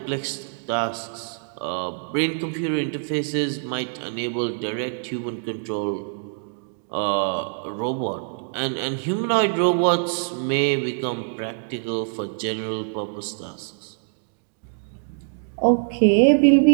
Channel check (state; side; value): silent; left; digital silence